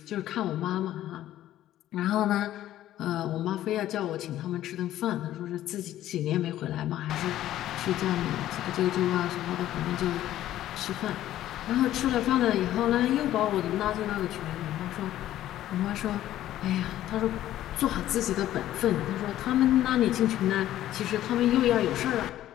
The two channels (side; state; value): right; quieter; 13.2 dB